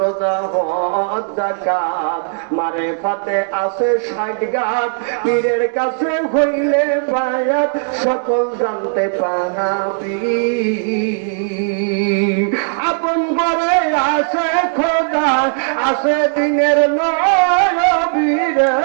হজ যাকাত মারিফাতে আছে 60 গাত, পীরের কাছে হইলে বায়াত সকল জানতে পাবি। আপন করে আছে খোদা, আছে দিনের নবী রে,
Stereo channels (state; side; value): silent; left; digital silence